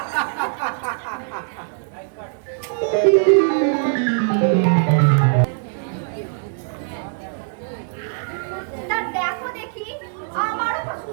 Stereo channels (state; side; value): silent; left; 61 dB below the other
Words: তা দেখো দেখি, আমারও তো